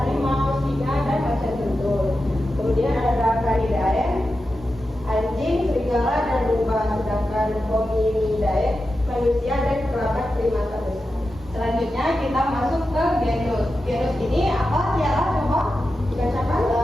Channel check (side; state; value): both; normal; correlation 0.91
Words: singa, dan macan tutul. Kemudian ada Dracanidae, anjing, serigala, dan lumba. Sedangkan Hominidae, manusia dan kerabat primata besar. Selanjutnya kita masuk ke genus. Genus ini apa, Tiara? Coba dibacakan.